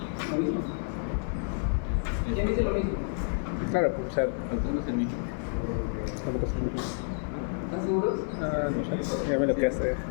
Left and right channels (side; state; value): right; silent; 58 dB below the other